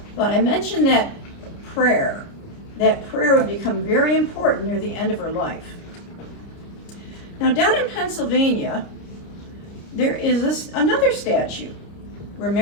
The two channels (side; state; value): right; late; 29 ms